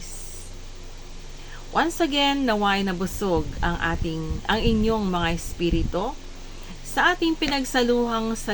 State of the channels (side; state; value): both; identical; correlation 1.00